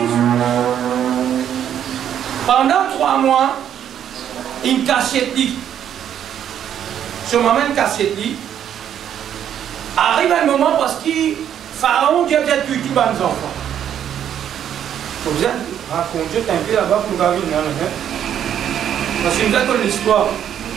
pendant 3 mois, il cachette. Ce moment, il cachette. Arrive un moment parce que Pharaon, Dieu a tué tous les enfants. Vous êtes raconté un peu là-bas pour nous venir. Parce que nous avons l'histoire.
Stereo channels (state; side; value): quieter; left; 9.7 dB